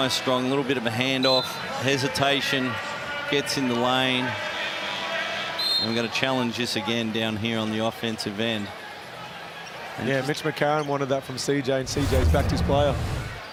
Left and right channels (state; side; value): identical; both; correlation 1.00